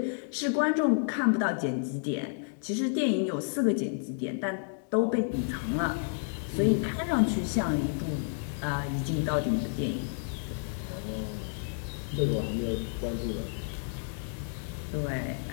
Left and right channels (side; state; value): right; silent; digital silence